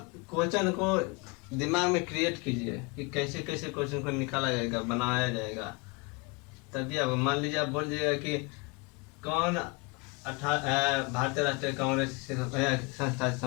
क्वेश्चन को दिमाग में क्रिएट कीजिए कि कैसे कैसे क्वेश्चन को निकाला जाएगा, बनाया जाएगा। तभी अब मान लीजिए आप बोल दीजिएगा कि कौन भारतीय राष्ट्रीय कांग्रेस से संस्था से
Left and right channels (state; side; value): quieter; right; 28.5 dB